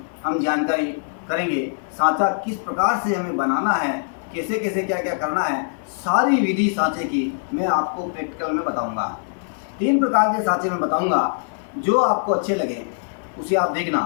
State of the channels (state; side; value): silent; right; digital silence